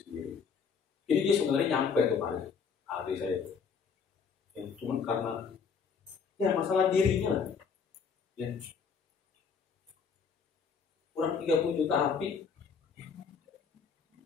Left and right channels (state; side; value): quieter; right; 5.9 dB